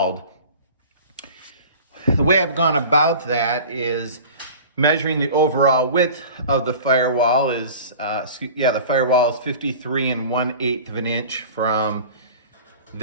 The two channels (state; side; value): inverted; both; correlation -0.39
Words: The way I've gone about that is measuring the overall width of the firewall is, the firewall is 53 1/8 of an inch from